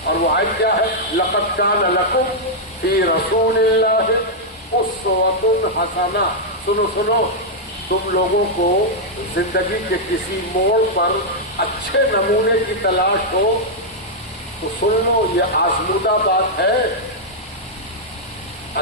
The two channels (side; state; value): both; normal; correlation -0.05